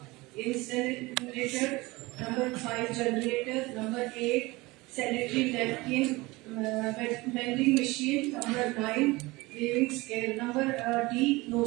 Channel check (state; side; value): quieter; left; 22.1 dB